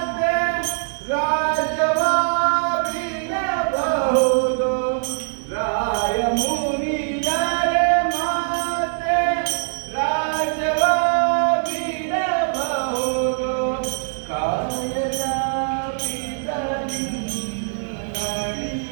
ರಾಜವ ಬಿಡಬಹುದು. ರಾಯ ಮುನಿದರೆ ಮಾತೆ ರಾಜವ ಬಿಡಬಹುದು. ಕಾಯದ ಪಿತರಿ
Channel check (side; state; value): left; silent; 60 dB below the other